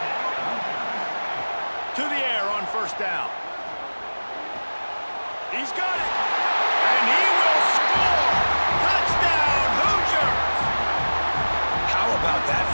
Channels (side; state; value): both; inverted; correlation -1.00